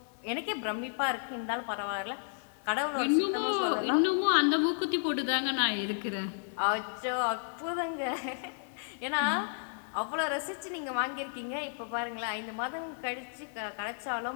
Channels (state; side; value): silent; right; 56 dB below the other